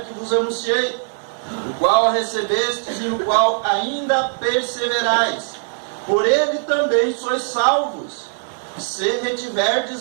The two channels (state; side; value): silent; left; 65 dB below the other